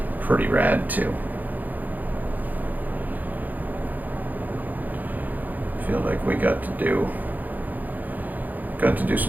pretty rad too. Feel like we got to do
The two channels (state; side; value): late; left; 0.083 ms